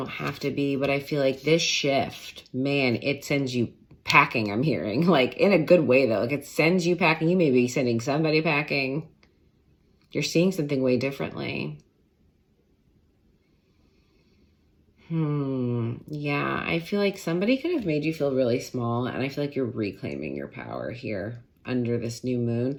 have to be, but I feel like this shift, man, it sends you packing, I'm hearing. Like, in a good way, though. Like, it sends you packing. You may be sending somebody packing. You're seeing something way differently. Yeah, I feel like somebody could have made you feel really small, and I feel like you're reclaiming your power here under this new moon.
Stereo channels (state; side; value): identical; both; correlation 1.00